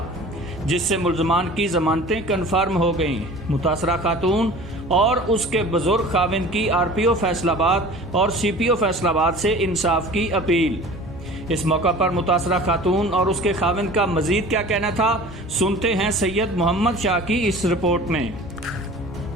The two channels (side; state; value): both; normal; correlation 0.42